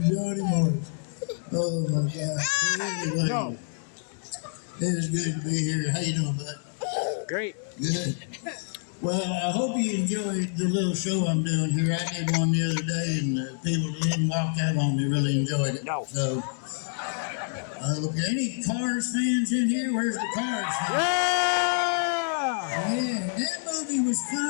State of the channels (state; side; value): silent; right; digital silence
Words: Johnny Morris. Oh my God. Anyway, No. it is good to be here. How you doing, bud? Great. Good. Well, I hope you enjoyed the little show I'm doing here. I did one the other day, and the people that didn't walk out on me really enjoyed it. No. So, any Cars fans in here? Where's the Cars fans? Yeah, that movie was